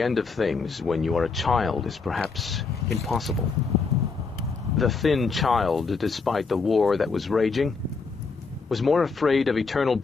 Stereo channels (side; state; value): right; quieter; 4.6 dB